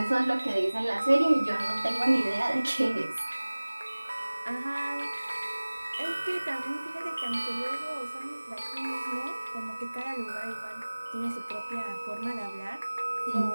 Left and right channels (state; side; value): inverted; both; correlation -1.00